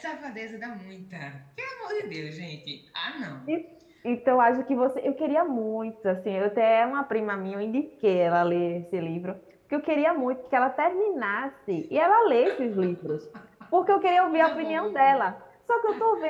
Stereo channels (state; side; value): identical; both; correlation 1.00